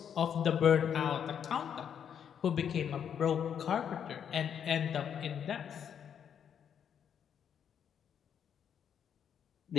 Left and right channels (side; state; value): right; quieter; 8.3 dB